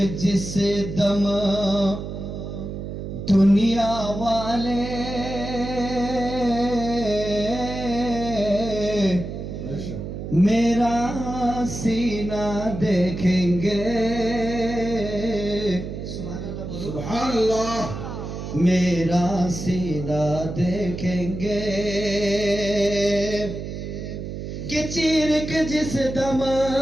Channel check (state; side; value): noise; right; hum, 7 dB below the sound